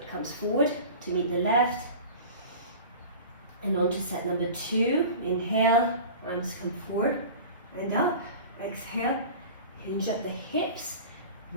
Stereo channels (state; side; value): inverted; both; correlation -0.37